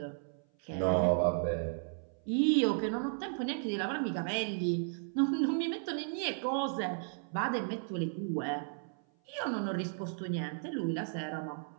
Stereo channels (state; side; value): silent; left; 55 dB below the other